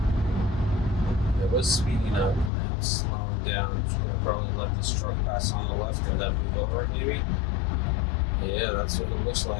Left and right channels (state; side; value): drops out; right; at 2.5 s